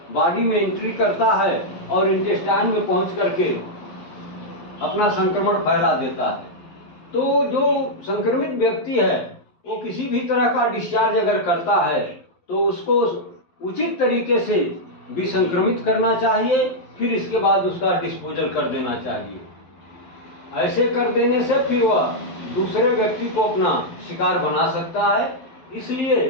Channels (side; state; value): right; late; 12 ms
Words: बॉडी में एंट्री करता है और इंटेस्टाइन में पहुंच करके अपना संक्रमण फैला देता है। तो जो संक्रमित व्यक्ति है वो किसी भी तरह का डिस्चार्ज अगर करता है तो उसको उचित तरीके से विसंक्रमित करना चाहिए, फिर इसके बाद उसका डिस्पोजल कर देना चाहिए। ऐसे कर देने से फिर वह दूसरे व्यक्ति को अपना शिकार बना सकता है, इसलिए